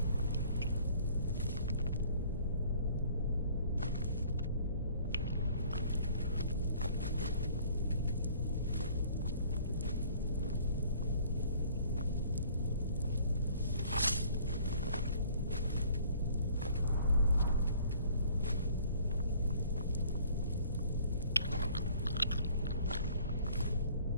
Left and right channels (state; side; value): inverted; both; correlation -0.55